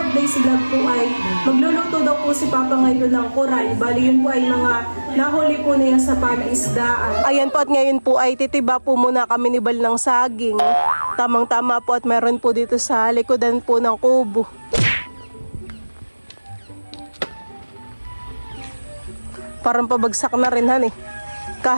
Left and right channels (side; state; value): both; inverted; correlation -1.00